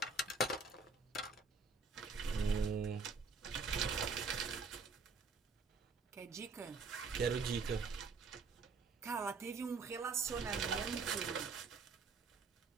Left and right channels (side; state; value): left; quieter; 4.4 dB